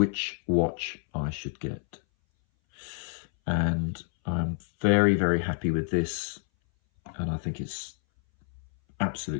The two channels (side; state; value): right; silent; 59 dB below the other